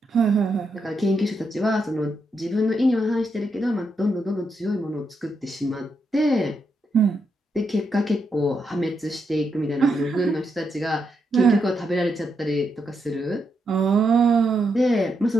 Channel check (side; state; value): both; normal; correlation 0.82